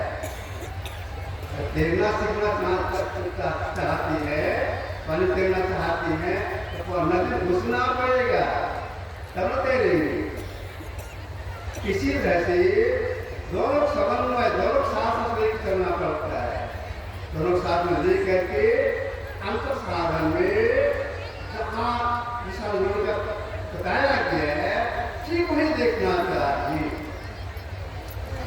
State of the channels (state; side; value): identical; both; correlation 1.00